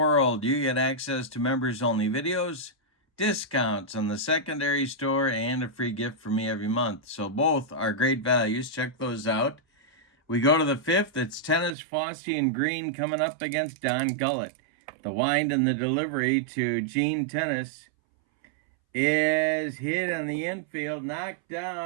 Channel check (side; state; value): left; drops out; at 11.8 s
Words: you get access to members-only videos, discounts on the secondary store, and a free gift from me every month. So both are great values. Check those out. We go to the 5th. It's Tennis, Fossey, and Green coming up against Don Gullett. The wind and the delivery to Gene Tennis. is hit in the infield, knocked